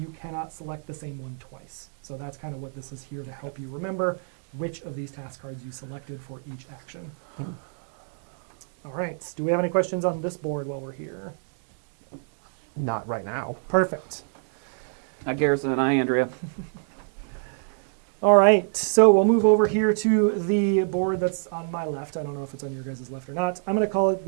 cannot select the same one twice. So that's kind of what this is here to help you remember which of these task cards you selected for each action. All right. Do we have any questions on this board while we're here? Not right now. Perfect. Hi, Garrison. Hi, Andrea. All right, so we'll move over here to the board that's on my left. I don't know if it's on your guys' left or not. I'm going to call it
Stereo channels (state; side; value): silent; left; digital silence